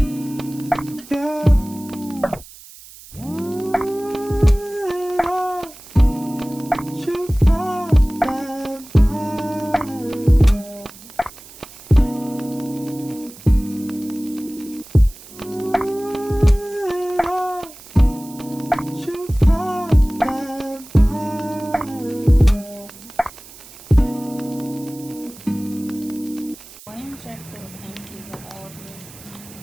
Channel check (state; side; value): noise; right; hiss, 19 dB below the sound